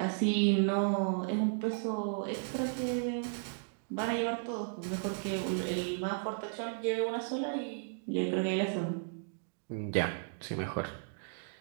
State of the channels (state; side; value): silent; left; digital silence